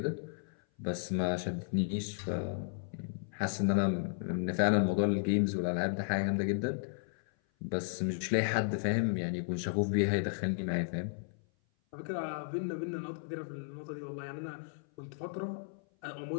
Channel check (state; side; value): silent; right; 55 dB below the other